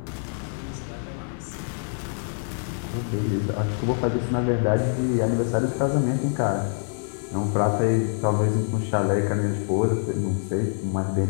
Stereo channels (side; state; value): right; silent; 57 dB below the other